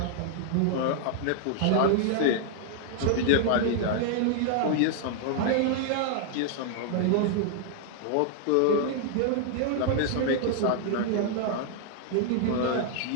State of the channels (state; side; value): different; both; correlation -0.01